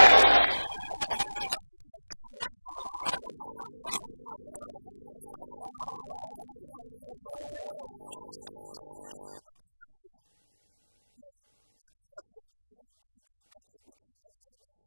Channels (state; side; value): inverted; both; correlation -1.00